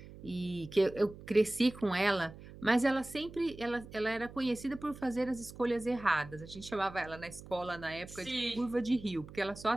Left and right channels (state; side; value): noise; right; hum, 16 dB below the sound